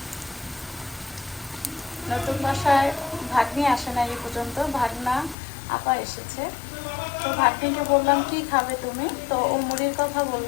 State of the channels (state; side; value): drops out; right; at 5.4 s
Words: নতুন বাসায় ভাগ্নি আসে না এই পর্যন্ত, ভাগনা আপা এসেছে। তো ভাগ্নিকে বললাম কি খাবে তুমি, তো ও মুড়ির কথা